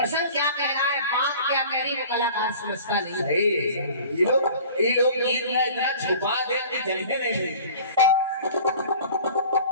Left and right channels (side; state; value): both; inverted; correlation -0.44